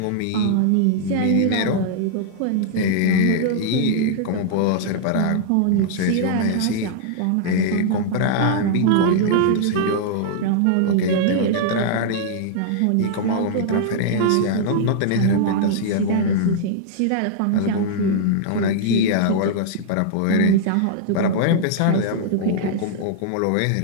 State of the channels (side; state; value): both; different; correlation -0.01